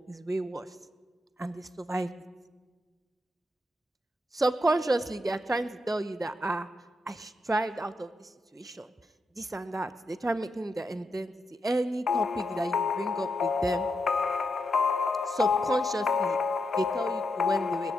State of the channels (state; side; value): normal; both; correlation 0.84